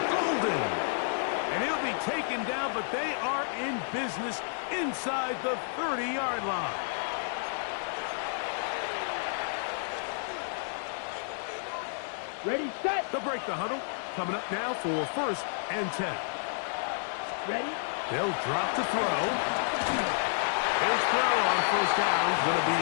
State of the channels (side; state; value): right; silent; digital silence